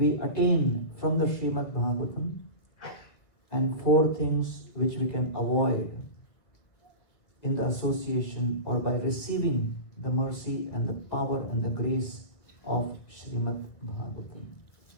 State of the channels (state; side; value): late; right; 2.1 ms